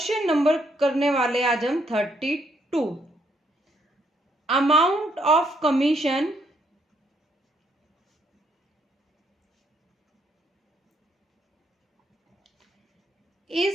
नंबर करने वाले आज हम 32। Amount of commission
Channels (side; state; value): both; normal; correlation 0.72